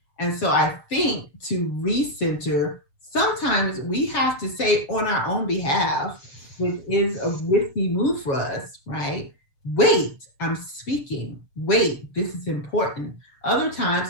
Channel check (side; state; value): right; late; 7.3 ms